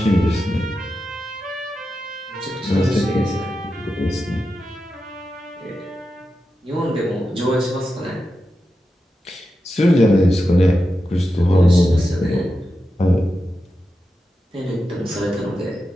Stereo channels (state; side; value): normal; both; correlation 0.90